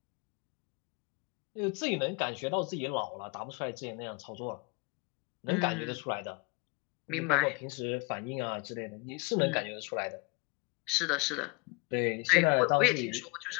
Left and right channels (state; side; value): quieter; right; 28.7 dB